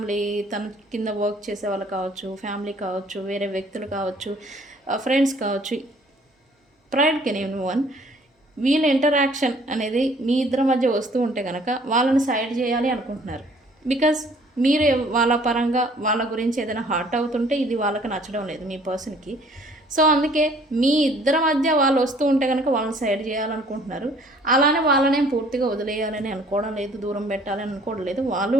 తన కింద వర్క్ చేసే వాళ్ళు కావచ్చు, ఫ్యామిలీ కావచ్చు, వేరే వ్యక్తులు కావచ్చు, ఫ్రెండ్స్ కావచ్చు, ప్రైడ్ కెన్ ఎవ్రీవన్. వీళ్ళ ఇంటరాక్షన్ అనేది మీ ఇద్దరి మధ్య వస్తూ ఉంటే కనుక వాళ్ళని సైడ్ చేయాలి అనుకుంటున్నారు. బికాజ్ మీరు వాళ్ళ పరంగా వాళ్ళ గురించి ఏదైనా హర్ట్ అవుతుంటే ఇది వాళ్ళకి నచ్చడం లేదు మీ పర్సన్కి. సో అందుకే మీ ఇద్దరి మధ్య వాళ్ళు వస్తూ ఉంటే కనుక వాళ్ళని సైడ్ చేయాలనుకుంటున్నారు. అలానే వాళ్ళనేం పూర్తిగా వదిలేయాలని అనుకోవడం లేదు, దూరం పెట్టాలని అనుకోవడం లేదు. వాళ్ళు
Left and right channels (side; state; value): both; normal; correlation 0.57